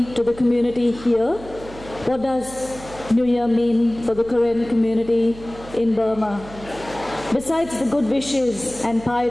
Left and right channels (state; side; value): noise; right; hum, 17 dB below the sound